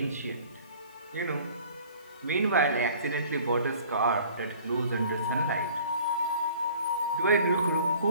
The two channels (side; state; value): both; inverted; correlation -0.50